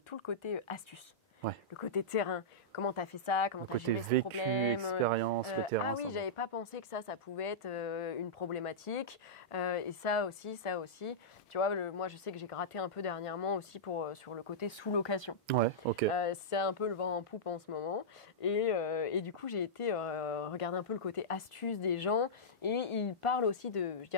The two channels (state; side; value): normal; both; correlation -0.12